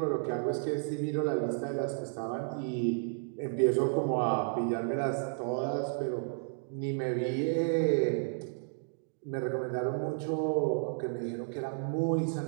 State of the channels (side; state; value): left; silent; digital silence